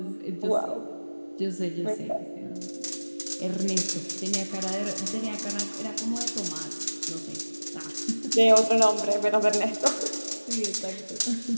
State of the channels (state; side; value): inverted; both; correlation -1.00